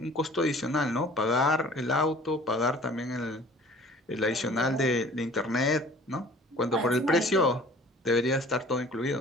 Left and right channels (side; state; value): both; normal; correlation 0.49